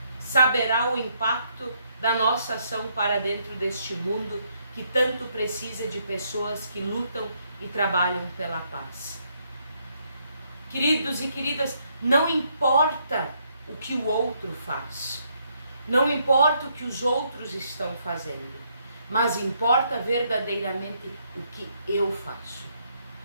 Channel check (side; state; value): both; inverted; correlation -0.73